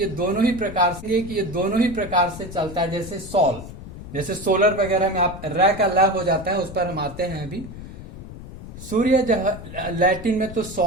दोनों ही प्रकार से चलता है। जैसे सॉल, जैसे सोलर वगैरह में आप र का ल हो जाता है, उस पर हम आते हैं अभी। सूर्य लैटिन में तो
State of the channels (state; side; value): noise; left; rumble, 12 dB below the sound